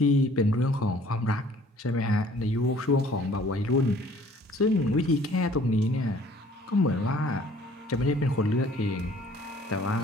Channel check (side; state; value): both; normal; correlation 0.55